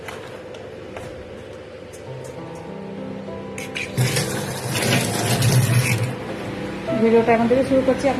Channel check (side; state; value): both; identical; correlation 1.00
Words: ভিডিওটা এখন থেকে শুরু করছি,